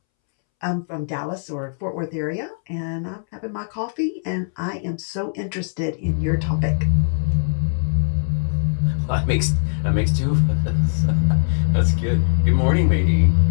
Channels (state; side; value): silent; right; 65 dB below the other